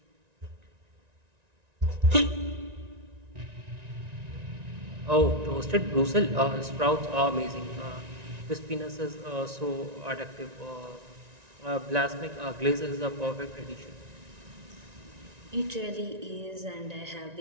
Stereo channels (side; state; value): left; late; 1.9 ms